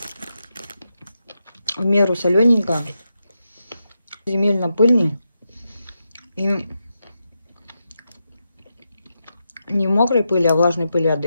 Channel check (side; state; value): both; inverted; correlation -0.86